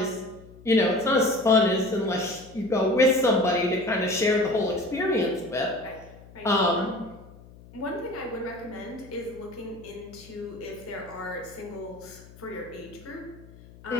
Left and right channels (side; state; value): left; noise; hum, 21 dB below the sound